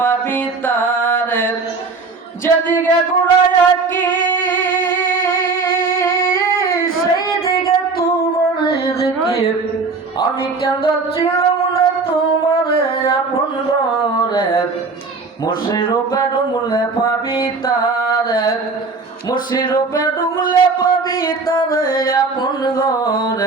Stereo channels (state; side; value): quieter; left; 4.1 dB